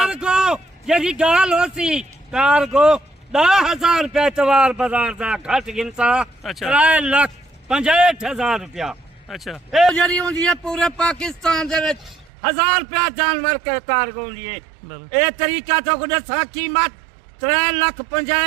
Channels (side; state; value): left; drops out; at 12.3 s